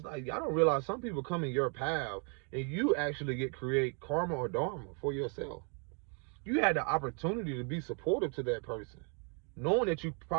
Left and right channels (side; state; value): left; quieter; 38.8 dB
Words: like, y'all don't realize some people come in your path and you actually create karma or dharma for yourself. You had the opportunity to be supportive to that person, knowing that you